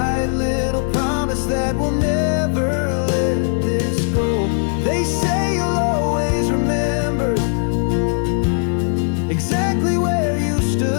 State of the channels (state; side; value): silent; right; 66 dB below the other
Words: little promise that we'll never let this go. They say you'll always remember exactly where you